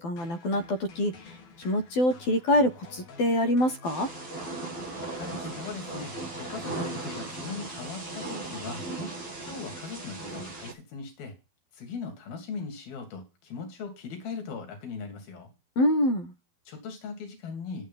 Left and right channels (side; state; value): right; late; 12 ms